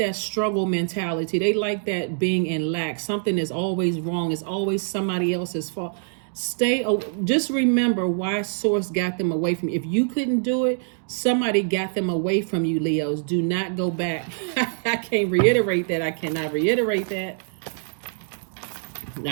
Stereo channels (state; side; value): silent; left; digital silence